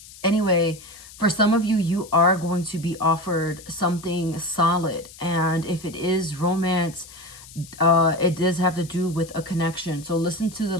anyway, for some of you, you are going to be offered something solid. And if it is romance, it does have to do with a connection. So listen to the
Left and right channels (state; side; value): noise; left; hiss, 19 dB below the sound